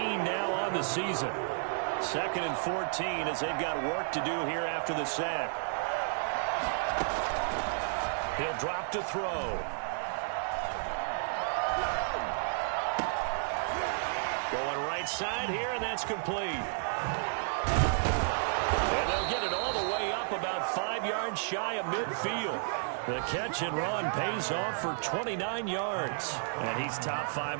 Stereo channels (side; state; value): left; silent; digital silence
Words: now on the season. 2nd and 14 as they've got work to do here after the sack. He'll drop to throw. Going right side here, and that's complete. And they'll get it all the way up about 5 yards shy of midfield. The catch and run pays off for 29 yards. And he's top